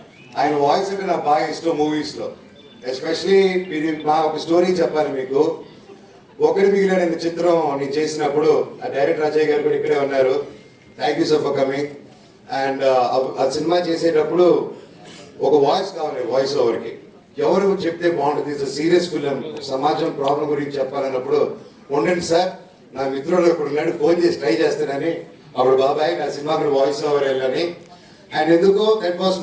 ఆయన వాయిస్ అంటే నాకు బాగా ఇష్టం మూవీస్ లో. ఎస్పెషలీ మీరు మా ఒక స్టోరీ చెప్పాలి మీకు. ఒకటి మిగిలిన చిత్రం నేను చేసినప్పుడు ఆ డైరెక్టర్ అజయ్ గారు కూడా ఇక్కడే ఉన్నారు. Thank you so for coming. And ఆ సినిమా చేసేటప్పుడు ఒక వాయిస్ కావాలి, వాయిస్ ఓవర్కి ఎవరు చెప్తే బాగుంటుంది, ఇట్స్ సీరియస్ ఫిలిం, సమాజం ప్రాబ్లం గురించి చెప్పాలన్నప్పుడు ఉండండి సార్ నా మిత్రుడు ఇప్పుడు ఉన్నాడు ఫోన్ చేసి ట్రై చేస్తానని, అప్పుడు బాబాయ్ నా సినిమాకి వాయిస్ ఓవర్ వెళ్ళని. అండ్ ఎందుకో that was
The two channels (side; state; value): both; identical; correlation 1.00